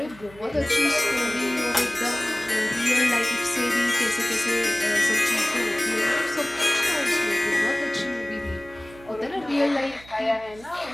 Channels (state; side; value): noise; right; hum, 21 dB below the sound